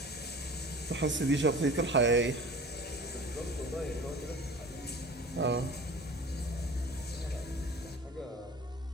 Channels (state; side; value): normal; both; correlation 0.41